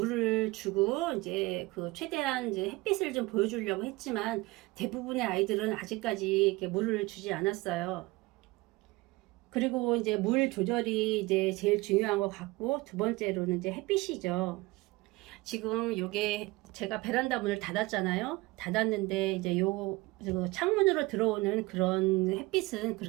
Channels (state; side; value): quieter; left; 22.0 dB